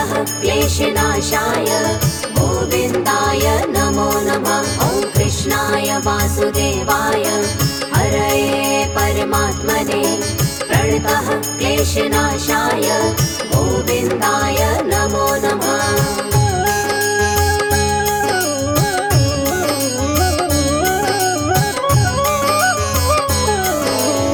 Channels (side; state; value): both; identical; correlation 1.00